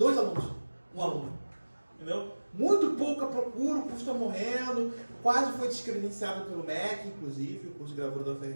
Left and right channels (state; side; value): inverted; both; correlation -1.00